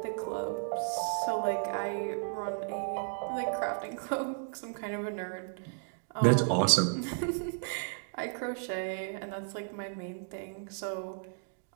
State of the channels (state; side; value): silent; left; digital silence